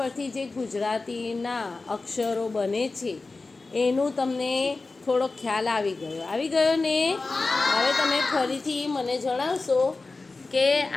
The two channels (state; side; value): quieter; right; 3.6 dB